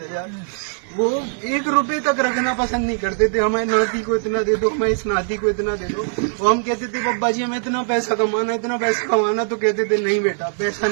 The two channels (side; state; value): left; silent; digital silence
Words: हजार, वो 1 रुपए तक रखना पसंद नहीं करते थे। हमारे नाती को इतना दे दो, हमारे इस नाती को इतना दे दो। और हम कहते थे बब्बा जी हमें इतना पैसा कमाना, इतना पैसा कमाना, तो कहते थे नहीं बेटा पैसा